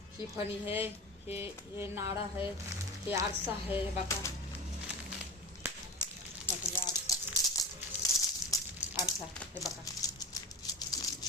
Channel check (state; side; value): normal; both; correlation 0.30